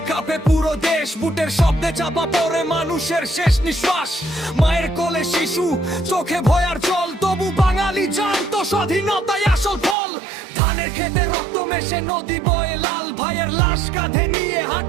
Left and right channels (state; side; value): drops out; left; at 10.0 s